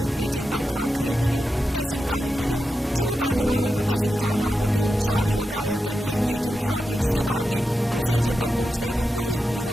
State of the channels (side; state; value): both; normal; correlation 0.89